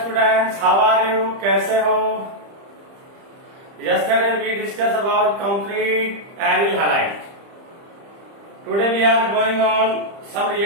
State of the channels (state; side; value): late; left; 30 ms